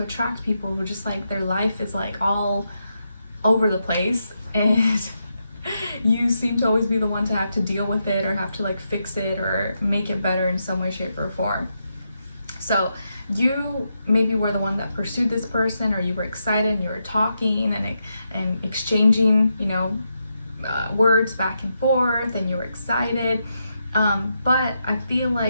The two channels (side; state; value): both; inverted; correlation -0.83